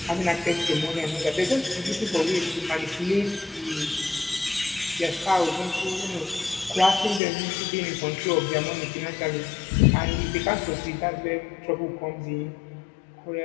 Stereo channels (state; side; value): drops out; right; at 7.2 s